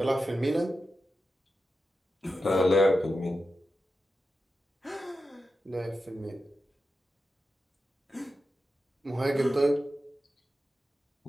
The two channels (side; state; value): both; normal; correlation 0.90